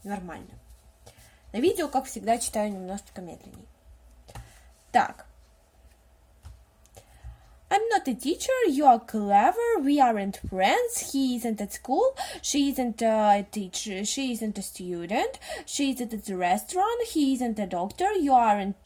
Нормально. На видео, как всегда, читаю немножечко медленнее. Так. I'm not a teacher, you are clever, we aren't friends, he isn't at school, she isn't a teacher, she isn't a student, she isn't at the restaurant, he isn't a doctor, you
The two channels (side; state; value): both; identical; correlation 1.00